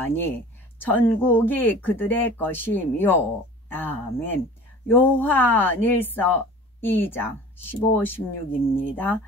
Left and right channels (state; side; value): normal; both; correlation 0.42